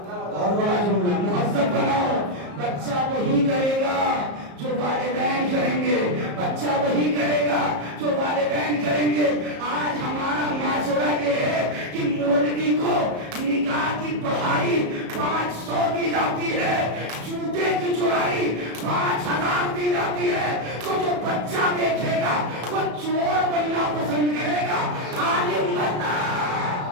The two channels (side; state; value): left; late; 34 ms